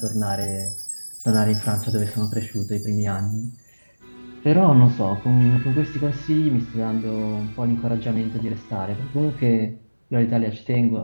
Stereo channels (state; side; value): inverted; both; correlation -1.00